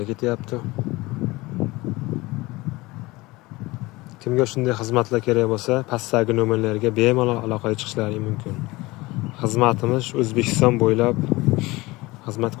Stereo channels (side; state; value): right; quieter; 21.3 dB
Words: ketyapti. Kimga shunday xizmatlar kerak bo'lsa, pastdagi nomerlarga bemalol aloqaga chiqishlari mumkin. Xizmatimiz O'zbekiston bo'ylab xizmat